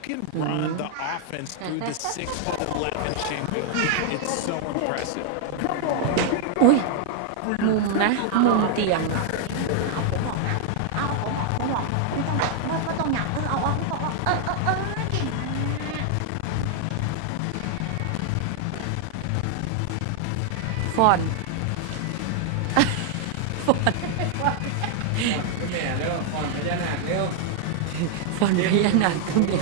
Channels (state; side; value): different; both; correlation 0.00